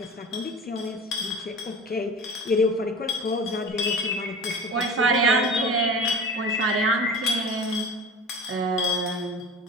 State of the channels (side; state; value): both; normal; correlation 0.35